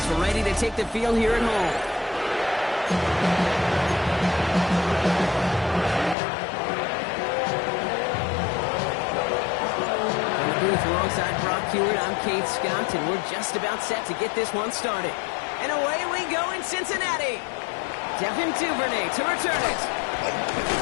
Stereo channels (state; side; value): drops out; right; at 6.2 s